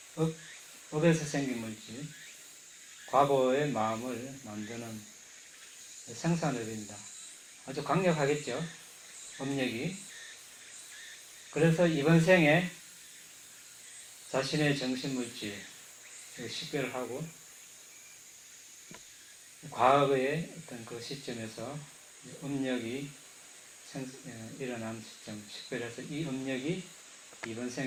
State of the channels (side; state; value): both; identical; correlation 1.00